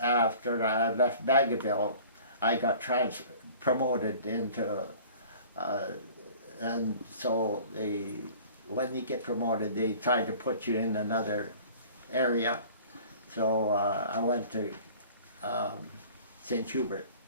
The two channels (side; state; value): both; inverted; correlation -0.47